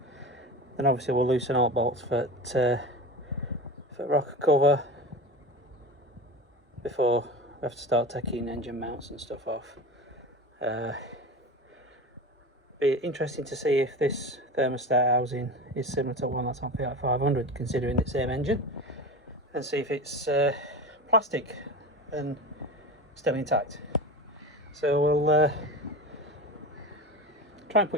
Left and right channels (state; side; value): normal; both; correlation 0.29